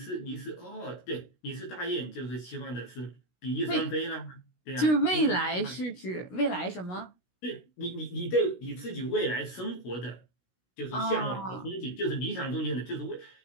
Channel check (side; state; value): right; late; 16 ms